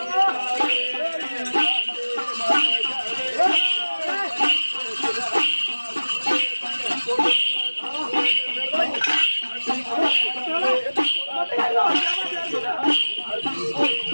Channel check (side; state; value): both; inverted; correlation -1.00